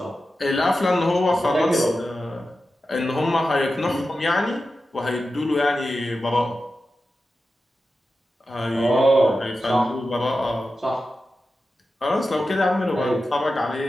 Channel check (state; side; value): normal; both; correlation 0.92